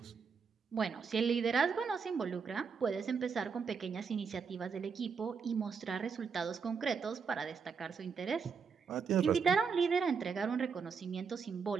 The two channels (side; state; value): left; quieter; 5.7 dB